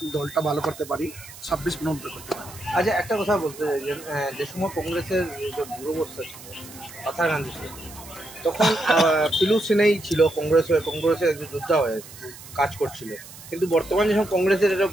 দলটা ভালো করতে পারি, 26 নম্বর করতে পারি। আচ্ছা, একটা কথা বলতে চাই যে সময় কংগ্রেসের যে দূরবস্থা ছিল পাথারকান্দি ছিল, তখন পিলু সিনেই ছিল কংগ্রেসের একজন যোদ্ধা হয়ে কাজ করছিল। কিন্তু বর্তমানে যখন কংগ্রেসের একটা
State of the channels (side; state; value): right; noise; hiss, 17 dB below the sound